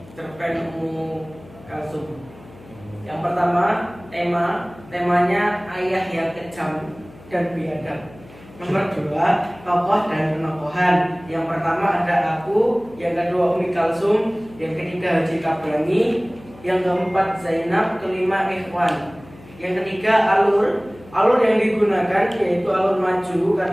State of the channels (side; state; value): left; noise; hum, 21 dB below the sound